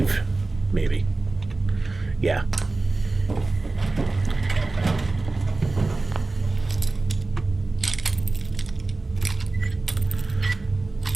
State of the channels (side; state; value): left; quieter; 3.3 dB